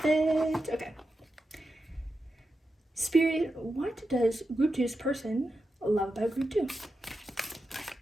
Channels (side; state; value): both; normal; correlation 0.89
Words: it. Okay. Spirit, what does Group 2's person love about Group 2?